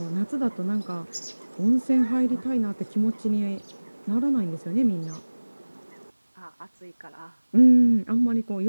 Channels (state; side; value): inverted; both; correlation -1.00